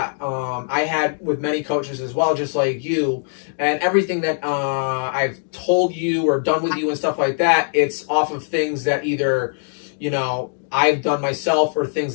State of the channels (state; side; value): silent; right; digital silence